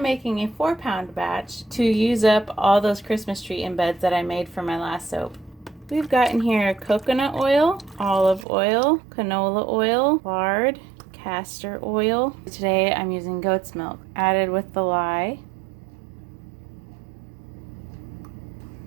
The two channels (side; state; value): left; drops out; at 8.5 s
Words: making a 4-pound batch to use up all those Christmas tree embeds that I made for my last soap. We've got in here coconut oil, olive oil, canola oil, lard, castor oil. Today I'm using goat's milk, added with the lye.